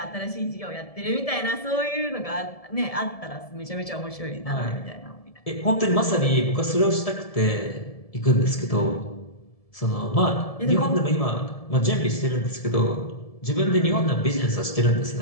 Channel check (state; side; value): late; right; 1.7 ms